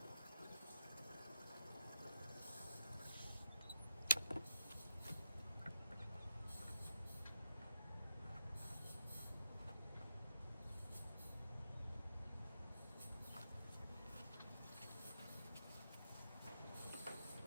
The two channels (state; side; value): inverted; both; correlation -0.85